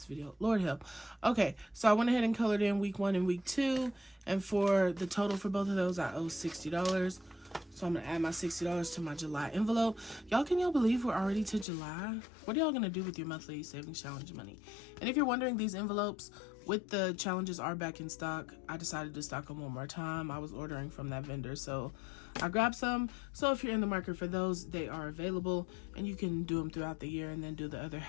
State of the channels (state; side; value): drops out; right; at 11.7 s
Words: video. Lord help. Okay, so I went ahead and colored in week 1 and week 2. And for the total for both of those, I owe $60. So I'm going to add my $60 to my July envelope. Y'all, can y'all believe we're already to July? What are y'all going to do with your monthly savings challenge money? And if you're wondering, these envelopes with the challenges are back in stock. I decided to stock them one more time. I was ordering from that vendor, so I grabbed some. So if you're in the market for those, they are available. And you can do them throughout the year and then do the other